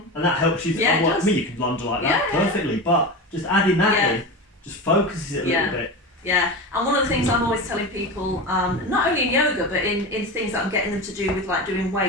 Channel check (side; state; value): both; normal; correlation 0.24